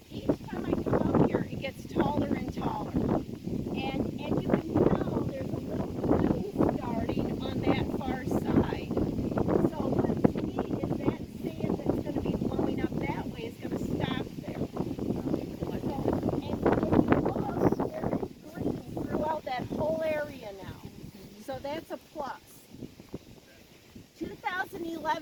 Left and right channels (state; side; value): identical; both; correlation 1.00